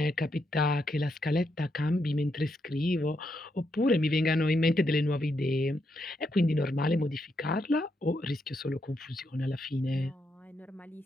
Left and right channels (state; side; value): normal; both; correlation 0.80